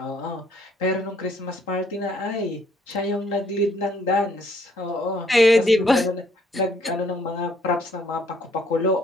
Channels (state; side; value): normal; both; correlation 0.65